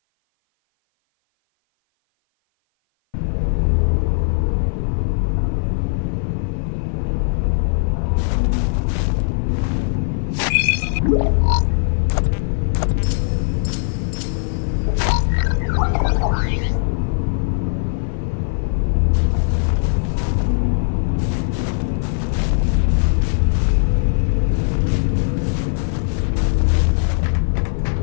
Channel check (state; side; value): silent; right; 56 dB below the other